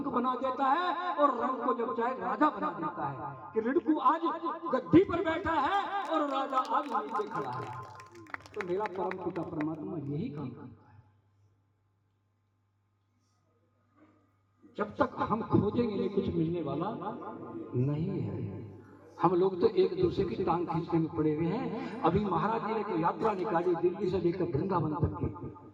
बना देता है और रंग को जब चाहे राजा बना देता है। कि रिड़कू आज गद्दी पर बैठा है और राजा आज नीचे खड़ा है। तो मेरा परम पिता परमात्मा यही काम करता है। जब तक हम खोजेंगे नहीं कुछ मिलने वाला नहीं है। हम लोग तो एक दूसरे की टांग खींचने में पड़े हुए हैं। अभी महाराज जी ने एक यात्रा निकाली दिल्ली से लेकर वृंदावन तक की।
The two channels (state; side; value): identical; both; correlation 1.00